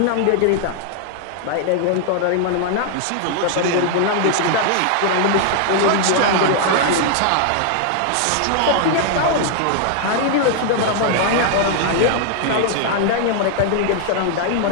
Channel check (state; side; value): different; both; correlation 0.00